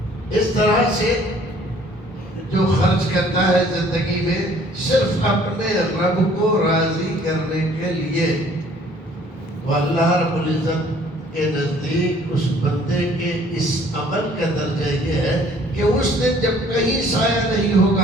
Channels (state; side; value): normal; both; correlation 0.57